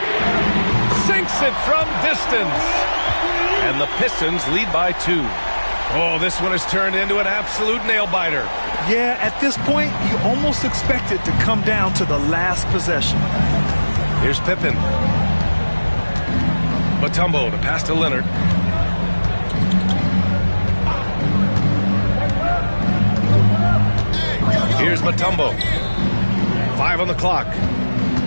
Sinks it from distance. And the Pistons lead by 2. Oh, this one has turned into an absolute nail-biter. Yeah, at this point, you almost expect it to come down to the last possession. Here's Pippen. Mutombo to pass to Leonard. Here's Mutombo. 5 on the clock.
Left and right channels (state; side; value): inverted; both; correlation -1.00